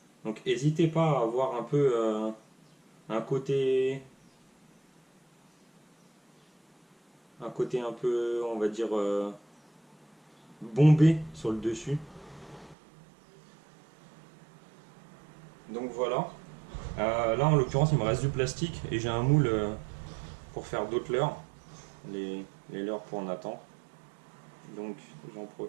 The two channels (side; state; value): left; drops out; at 12.8 s